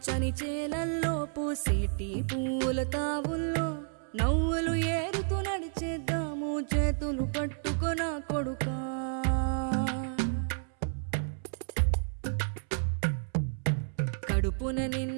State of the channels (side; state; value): left; silent; 57 dB below the other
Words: చేలల్లో పూసేటి పూల తావుల్లో నవ్వులు ఏరుతూ నడిచేద్దాము చేతులు పట్టుకొన కొడుకా. కడుపున